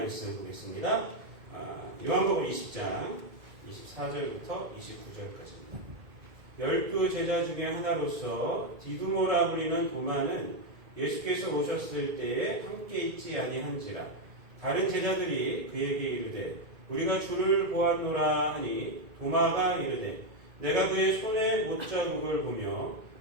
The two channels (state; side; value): late; left; 2.1 ms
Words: 보겠습니다. 요한복음 20장 24절부터 29절까지입니다. 12 제자 중에 하나로서 디두모라 불리는 도마는 예수께서 오셨을 때에 함께 있지 아니한지라. 다른 제자들이 그에게 이르되 우리가 주를 보았노라 하니 도마가 이르되 내가 그의 손에 못자국을 보며